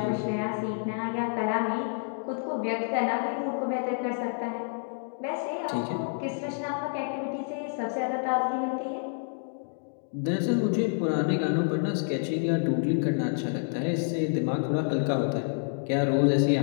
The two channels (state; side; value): silent; right; digital silence